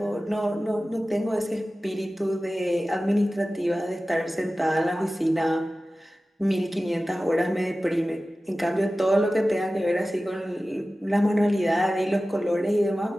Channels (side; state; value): both; normal; correlation 0.96